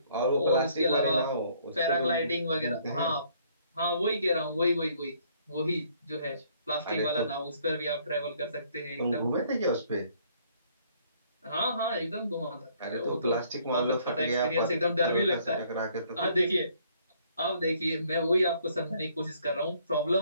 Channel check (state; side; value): inverted; both; correlation -0.63